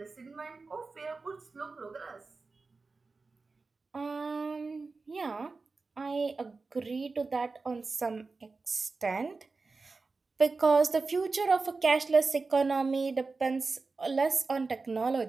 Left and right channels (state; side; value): quieter; left; 4.0 dB